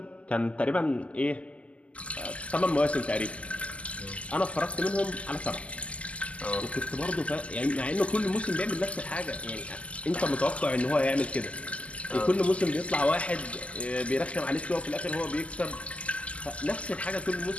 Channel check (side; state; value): right; late; 0.063 ms